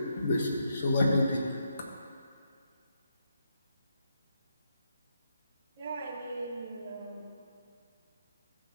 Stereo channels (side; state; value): both; inverted; correlation -0.79